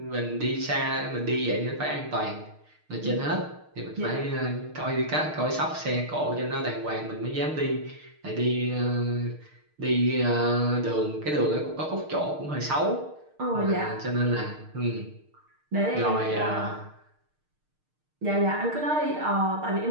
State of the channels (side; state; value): left; late; 6.5 ms